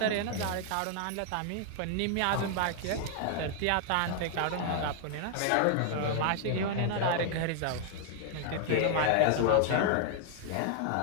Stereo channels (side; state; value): both; different; correlation 0.00